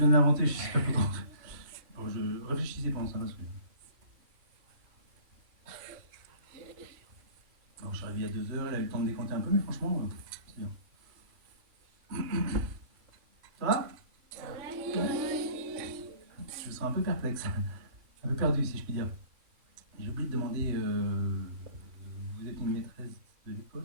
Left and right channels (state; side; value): late; left; 2.9 ms